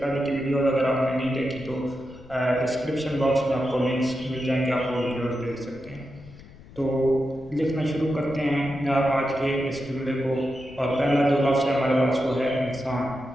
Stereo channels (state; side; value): noise; left; rumble, 20 dB below the sound